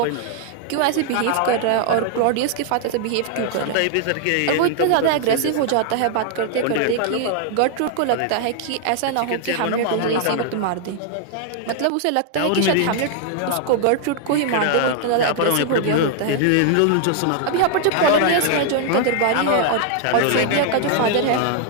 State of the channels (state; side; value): different; both; correlation 0.00